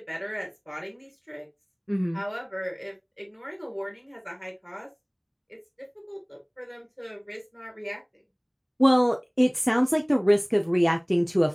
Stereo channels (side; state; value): both; identical; correlation 1.00